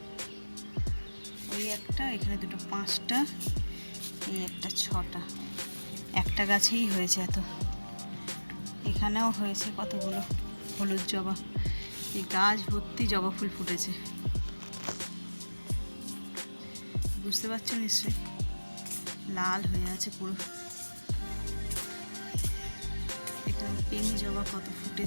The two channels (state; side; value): inverted; both; correlation -1.00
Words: ওই একটা, এখানে দুটো, পাঁচটা, এই একটা, ছটা, একটা গাছেই হয়েছে এত। এখানেও হয়েছে কতগুলো হলুদ জবা, এই গাছ ভর্তি জবা ফুল ফুটেছে, বুঝতে পারছো নিশ্চয়ই, লাল হয়ে আছে পুরো। এখানে পিঙ্ক জবা কত